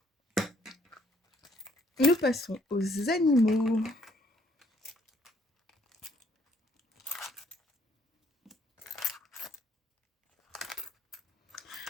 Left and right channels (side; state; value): both; normal; correlation 0.66